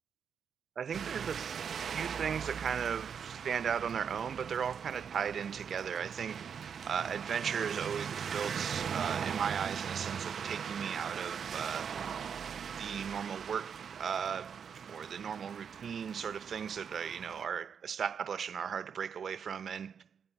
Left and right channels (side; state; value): left; quieter; 7.2 dB